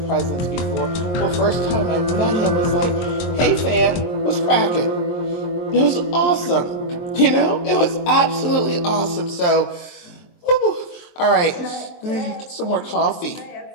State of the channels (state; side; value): late; right; 23 ms